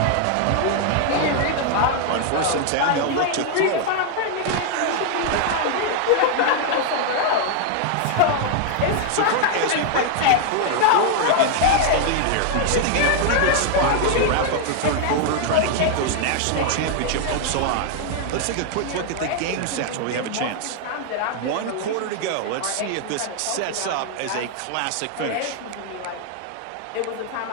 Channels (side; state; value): both; different; correlation 0.00